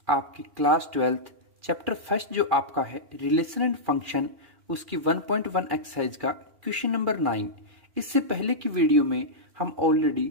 आपकी क्लास 12th चैप्टर फर्स्ट जो आपका है रिलेशन एंड फंक्शन, उसकी 1.1 एक्सरसाइज का क्वेश्चन नंबर 9। इससे पहले की वीडियो में हम ऑलरेडी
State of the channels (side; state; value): left; late; 2.4 ms